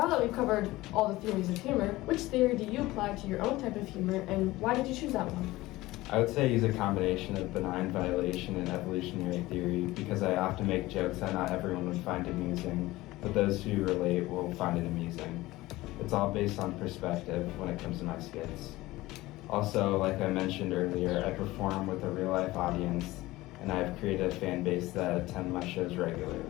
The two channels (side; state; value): right; quieter; 18.6 dB